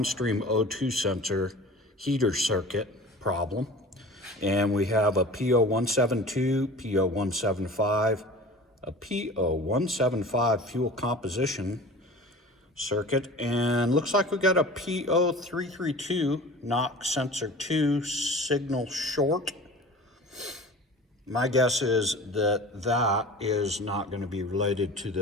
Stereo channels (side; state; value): both; normal; correlation 0.39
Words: O2 sensor heater circuit problem. And we have a P0172, P0175, a P0175 fuel composition circuit, and looks like we got a P0332 knock sensor 2 signal short. My guess is that that is not going to be related to